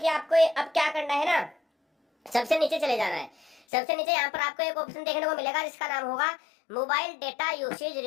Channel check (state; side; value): drops out; right; at 3.6 s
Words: आपको अब क्या करना है ना, सबसे नीचे चले जाना है। सबसे नीचे यहाँ पर आपको एक ऑप्शन देखने को मिलेगा जिसका नाम होगा mobile data usage